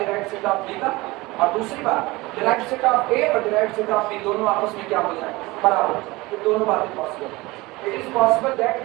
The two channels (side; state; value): left; quieter; 21.6 dB